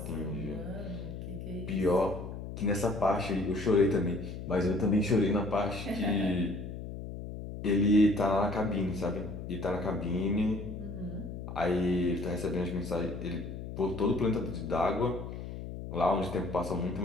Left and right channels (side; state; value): left; noise; hum, 8 dB below the sound